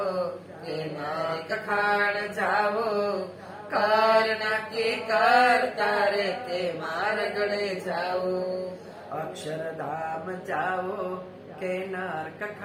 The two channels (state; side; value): identical; both; correlation 1.00